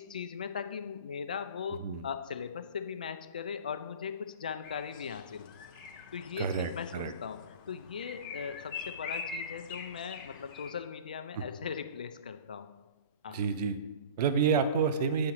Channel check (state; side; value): inverted; both; correlation -0.38